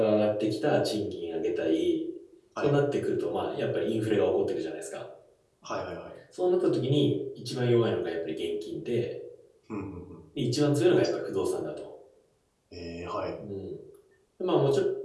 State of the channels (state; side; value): identical; both; correlation 1.00